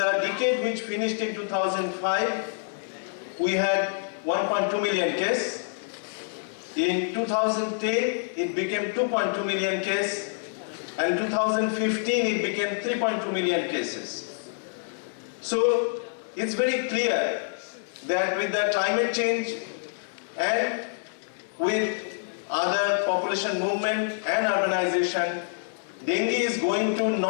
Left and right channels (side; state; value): right; silent; digital silence